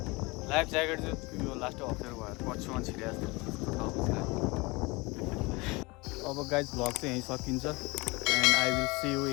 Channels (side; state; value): right; quieter; 24.9 dB